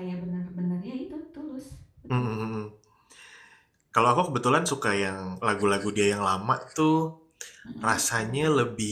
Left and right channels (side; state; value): both; identical; correlation 1.00